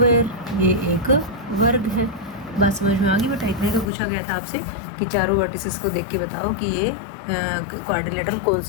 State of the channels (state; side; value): drops out; right; at 3.9 s